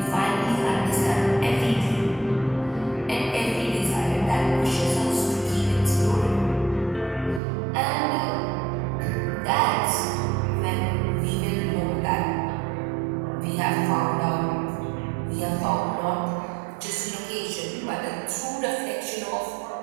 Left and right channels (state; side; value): drops out; left; at 7.4 s